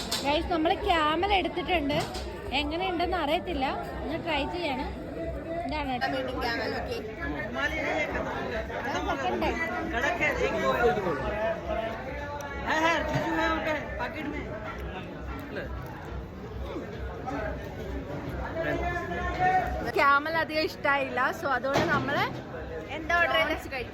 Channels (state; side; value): identical; both; correlation 1.00